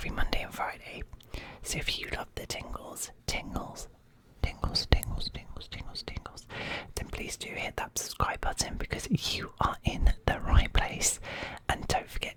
Monday and Friday. So if you love the tingles, then please do hit that subscribe button because you are in the right place. And don't forget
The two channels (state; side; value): identical; both; correlation 1.00